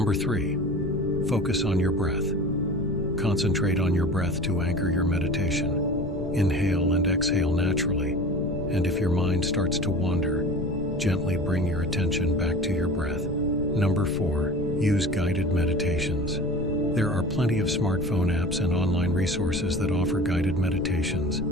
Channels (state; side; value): noise; left; rumble, 9 dB below the sound